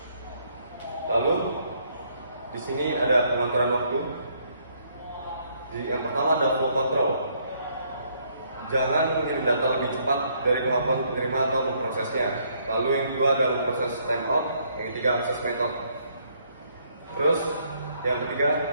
Lalu di sini ada pengaturan waktu. Yang pertama adalah flow control. Jangan mengirim data lebih cepat dari kemampuan penerima atau memprosesnya. Lalu yang kedua adalah proses timeout. Yang ketiga access method. Terus yang ketiga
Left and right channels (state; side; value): inverted; both; correlation -0.69